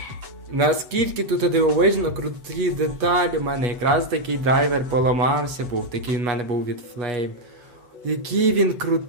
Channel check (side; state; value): left; late; 8.3 ms